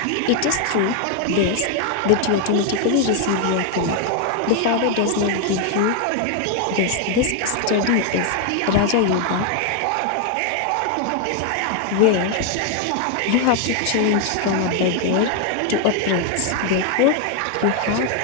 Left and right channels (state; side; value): different; both; correlation 0.01